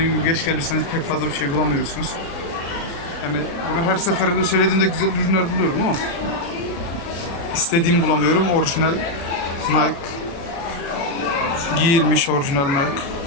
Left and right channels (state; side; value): late; right; 36 ms